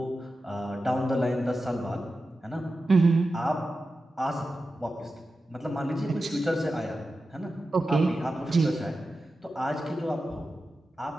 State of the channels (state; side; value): normal; both; correlation 0.92